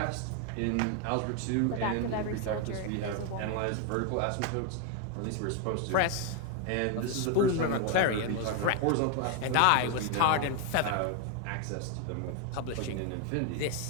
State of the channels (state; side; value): different; both; correlation 0.01